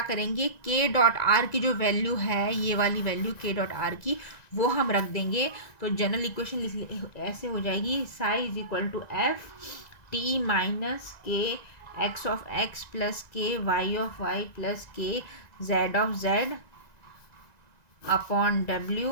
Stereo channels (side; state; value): right; late; 1.9 ms